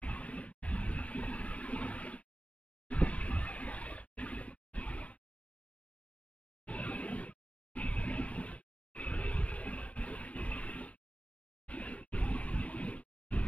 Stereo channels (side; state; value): right; late; 0.066 ms